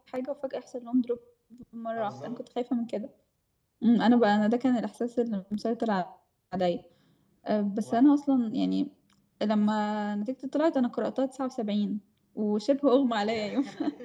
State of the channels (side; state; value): both; identical; correlation 1.00